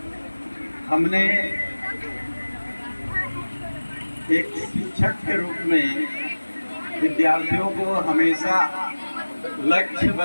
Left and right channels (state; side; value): inverted; both; correlation -1.00